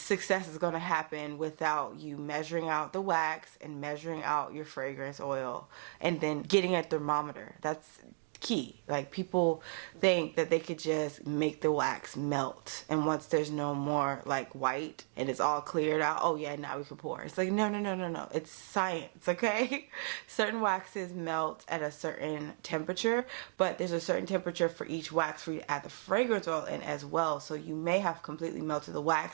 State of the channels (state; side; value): silent; left; digital silence